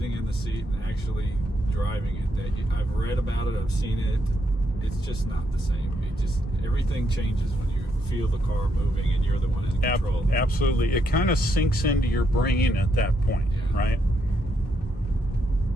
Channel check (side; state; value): both; normal; correlation 0.77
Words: in the seat and actually driving it. I've read about it, I've seen it. It's just not the same. Everything changes when you feel the car moving and you're the one in control. Absolutely. It kind of sinks into your brain at that point, right?